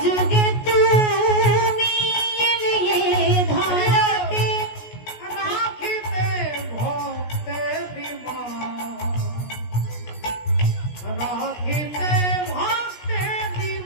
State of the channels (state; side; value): late; right; 17 ms